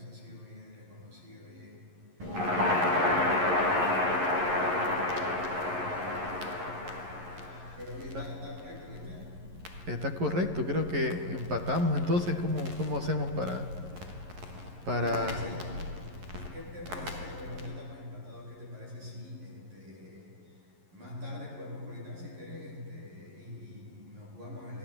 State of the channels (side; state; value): left; late; 11 ms